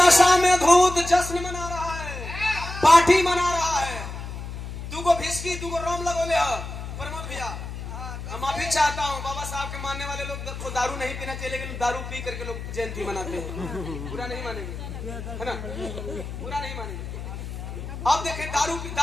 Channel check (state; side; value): noise; left; hum, 8 dB below the sound